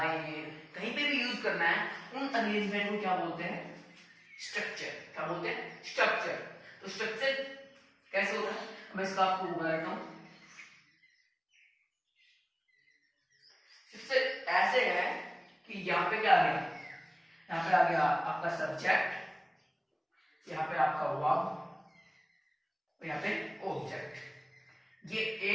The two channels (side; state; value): both; identical; correlation 1.00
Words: कहीं पे भी यूज करना है, उन अरेंजमेंट को क्या बोलते हैं? स्ट्रक्चर। क्या बोलते हैं? स्ट्रक्चर। तो स्ट्रक्चर कैसे होता है, मैं इसका आपको बताता हूं। सबसे ऐसे है कि यहाँ पे क्या आ गया? यहाँ पे आ गया आपका सब्जेक्ट, यहाँ पे आपका वर्ब, और यहाँ पे ऑब्जेक्ट। ये